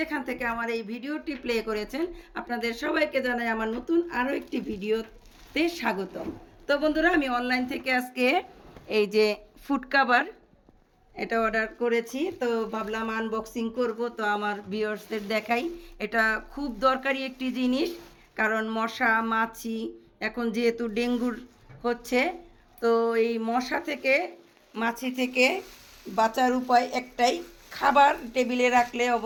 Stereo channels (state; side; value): identical; both; correlation 1.00